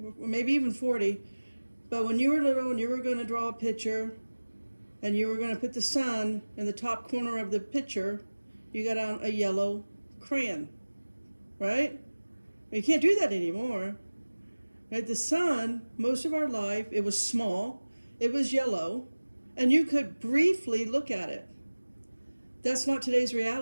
or maybe even 40, but when you were little and you were going to draw a picture and you were going to put the sun in the top corner of the picture, you got out a yellow crayon, right? You can't do that anymore. Right? The sun, most of our life, it was small, it was yellow, and you could briefly look at it. That's not today's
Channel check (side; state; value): both; inverted; correlation -1.00